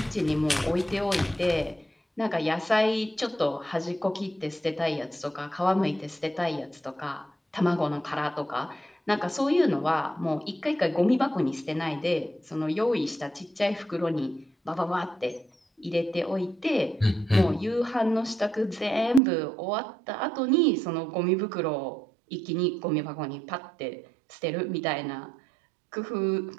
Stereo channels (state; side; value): drops out; left; at 19.2 s